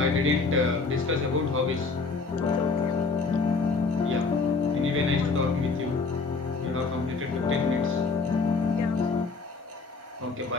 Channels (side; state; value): right; quieter; 4.2 dB